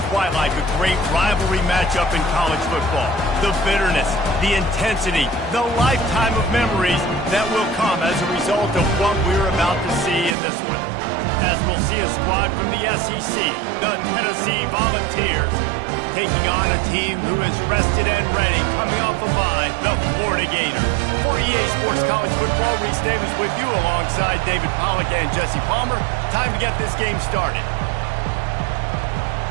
quite like a great rivalry matchup in college football. The bitterness, the intensity, the lifetime of memories that will come as a result of what we're about to see in this one. As we'll see a squad from the SEC, the Tennessee Volunteers, taking on a team who is rested and ready, coming off a bye, the Florida Gators. For EA Sports College Football, Reese Davis with you alongside David Pollack and Jesse Palmer. Time to get this game started.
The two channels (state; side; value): drops out; left; at 10.4 s